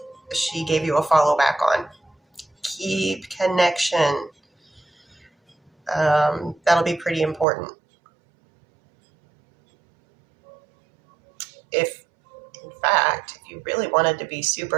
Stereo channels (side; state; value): left; drops out; at 7.5 s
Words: she gave you a follow back on. Keep connection. That'll be pretty important. If, in fact, if you really wanted to be